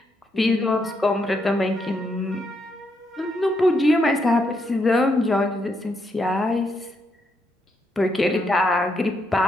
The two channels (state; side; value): normal; both; correlation 0.78